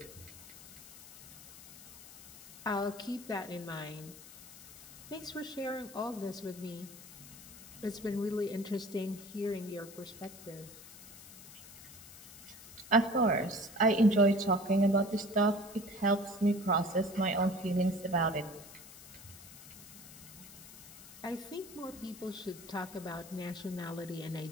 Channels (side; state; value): left; noise; hiss, 16 dB below the sound